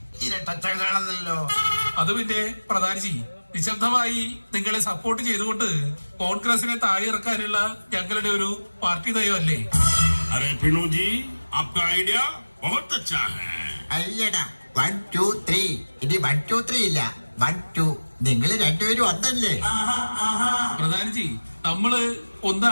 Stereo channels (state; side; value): inverted; both; correlation -1.00